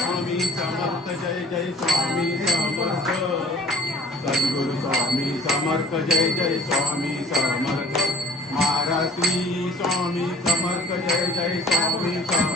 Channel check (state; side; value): normal; both; correlation 0.50